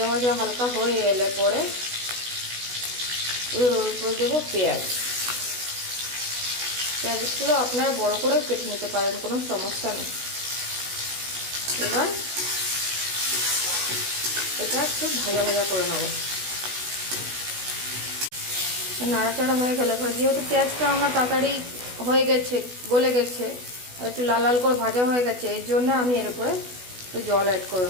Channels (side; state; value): left; late; 16 ms